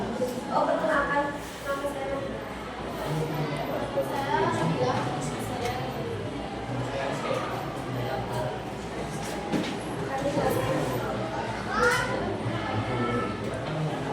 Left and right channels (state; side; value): identical; both; correlation 1.00